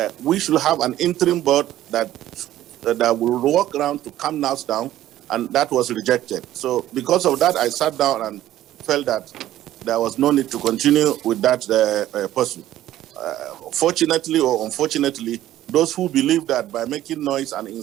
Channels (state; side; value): quieter; left; 13.4 dB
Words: we should have an interim board that will work around to calm us down, and that was rejected. So because of that, I sat down and felt that there was no need to continue with that person. Fortunately or unfortunately, those who believe that by making noise and